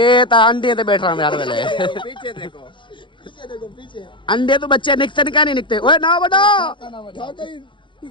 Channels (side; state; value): right; late; 0.24 ms